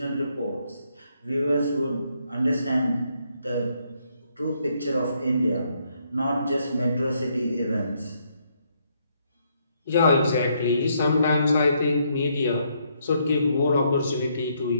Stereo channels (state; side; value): inverted; both; correlation -0.73